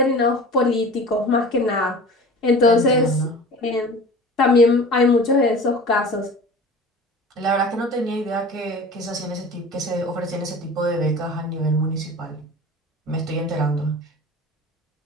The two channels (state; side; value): normal; both; correlation 0.39